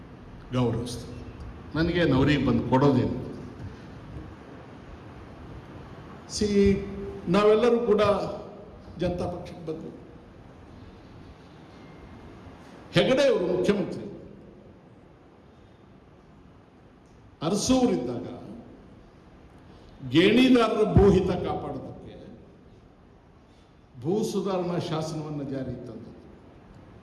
ಗೌರವಿಸ್ತೇನೆ. ನನಗೆ ನವರಿಗೆ ಬಂದು ಕೊಡೋದೇನು. ನಾವೆಲ್ಲರೂ ಕೂಡ ಜನತಾ ಪಕ್ಷಕ್ಕೆ ಬಂದು ಹೆಗಡೆ ಅವರು ಮುಖ್ಯಮಂತ್ರಿ ಅರಸೂರಿದ್ದಾಗ ಗೇಣಿದಾರರ ಭೂಹಿತ ಕಾಪಾಡೋದಕ್ಕೆ ಭೂ ಸುಧಾರಣಾ ಶಾಸನವನ್ನು ಜಾರಿಗೆ ತಂದದ್ದು.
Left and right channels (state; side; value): identical; both; correlation 1.00